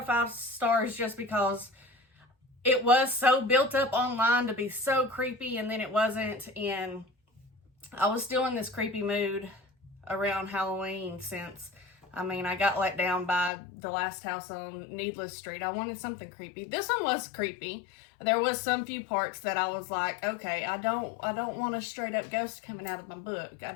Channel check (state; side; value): drops out; right; at 13.5 s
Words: 5 stars just because it was so built up online to be so creepy, and then it wasn't. And I was still in this creepy mood around Halloween since, I mean, I got let down by the last house on Needless Street. I wanted something creepy. This one was creepy. There was some few parts that I was like, okay, I don't want a straight up ghost coming out of my book. I